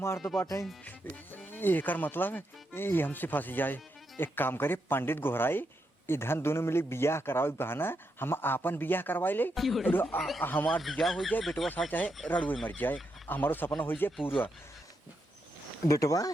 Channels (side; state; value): both; normal; correlation 0.82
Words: दो बाटे। एकर मतलब ये हमसे फंस जाए। एक काम करे पंडित गोहराई इधर दोनों मिले बियाह कराओ बहाना हम आपन बियाह करवाई ले। हमार बियाह हो जाए बेटवा सा चाहे रड़ुए मर जाए, हमारो सपना हो जाए पूरा। बेटवा